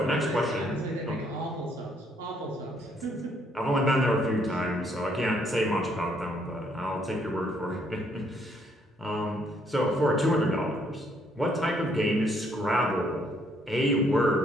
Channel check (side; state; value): both; normal; correlation 0.69